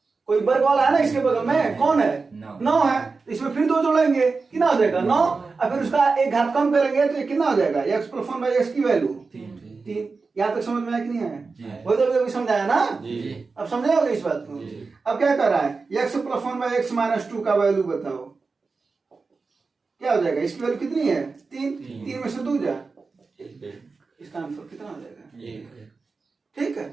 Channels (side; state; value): left; quieter; 4.3 dB